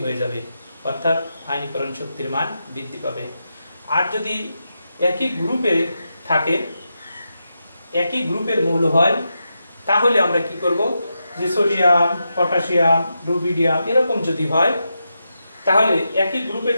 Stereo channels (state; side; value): inverted; both; correlation -0.87